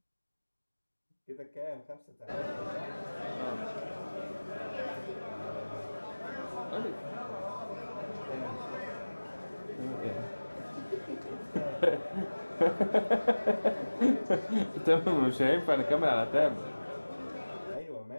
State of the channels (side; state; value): both; inverted; correlation -1.00